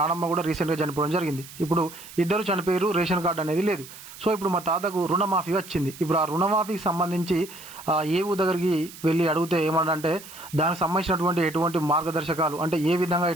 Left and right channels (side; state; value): right; noise; hiss, 16 dB below the sound